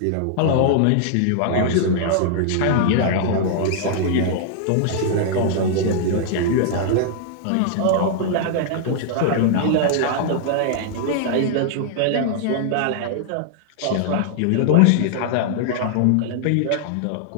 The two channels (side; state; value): both; different; correlation -0.01